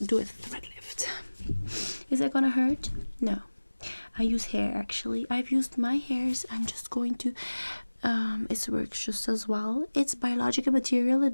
do a thread lift. Is that gonna hurt? No. I use hair actually. I've used my hairs. I'm just going to it works just as well. It's biological material.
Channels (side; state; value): both; inverted; correlation -1.00